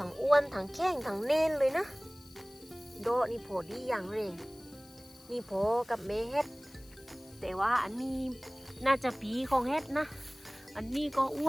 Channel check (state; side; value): noise; left; hiss, 24 dB below the sound